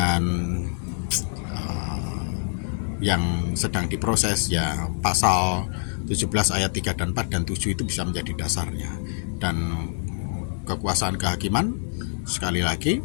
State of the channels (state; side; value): silent; right; 61 dB below the other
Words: yang sedang diproses, ya pasal 17 ayat 3 dan 4 dan 7 itu bisa menjadi dasarnya. Dan kekuasaan kehakiman sekali lagi